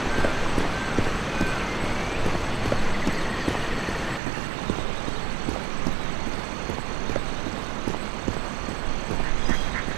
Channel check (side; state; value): left; drops out; at 4.2 s